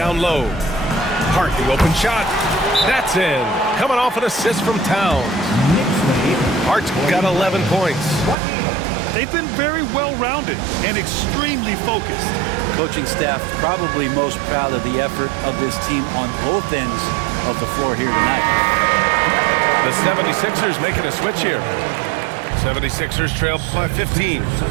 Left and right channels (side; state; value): left; drops out; at 8.3 s